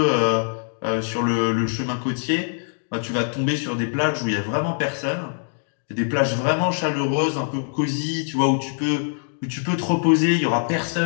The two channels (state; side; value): silent; right; digital silence